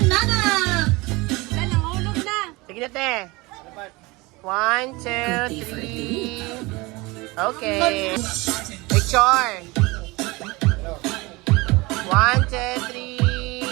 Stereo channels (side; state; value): left; quieter; 23.4 dB